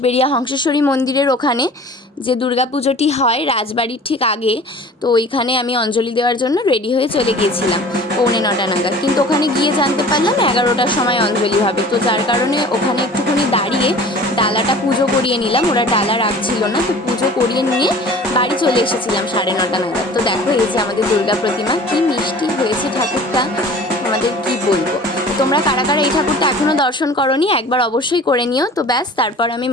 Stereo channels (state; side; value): normal; both; correlation 0.44